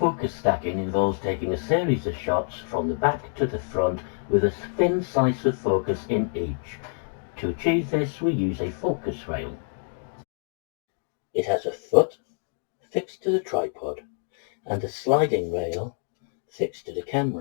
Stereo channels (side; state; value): right; silent; 56 dB below the other